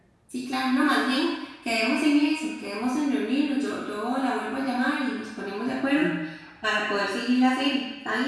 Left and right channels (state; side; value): identical; both; correlation 1.00